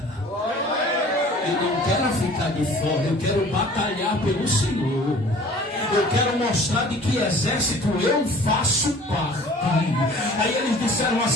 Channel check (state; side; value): normal; both; correlation 0.48